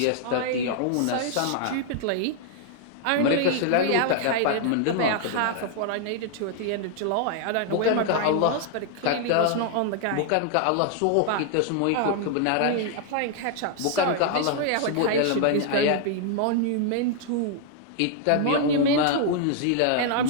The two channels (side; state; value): both; different; correlation 0.00